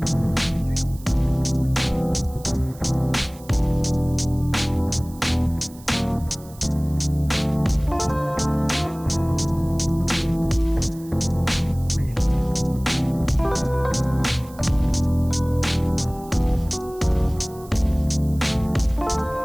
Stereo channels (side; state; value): right; noise; hiss, 22 dB below the sound